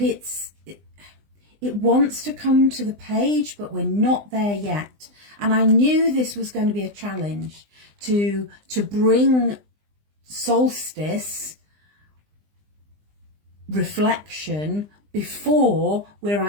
wants to come to the page, but we're not there yet. And I knew this was going to be a challenge to bring solstice reflection before we're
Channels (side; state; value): left; late; 20 ms